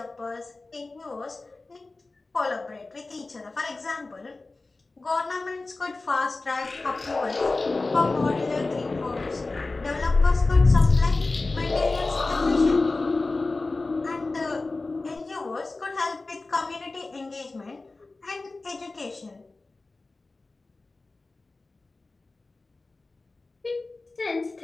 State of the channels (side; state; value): right; quieter; 3.4 dB